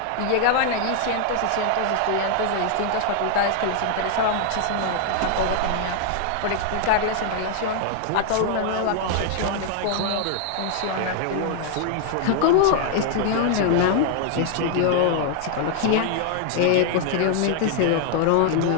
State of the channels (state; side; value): different; both; correlation 0.00